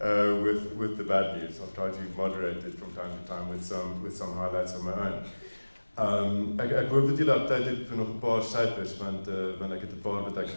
with the bad news. I'll try to moderate it from time to time with some highlights of my own. Ek hoop dat julle op tyd het vir nog 'n paar syfers want ek het 'n paar wat ek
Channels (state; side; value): inverted; both; correlation -1.00